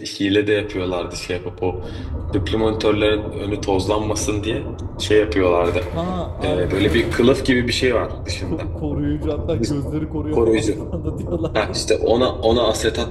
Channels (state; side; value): identical; both; correlation 1.00